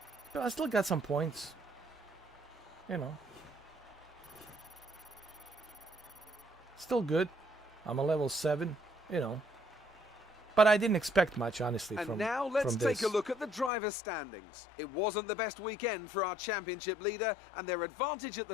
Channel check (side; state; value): right; drops out; at 13.7 s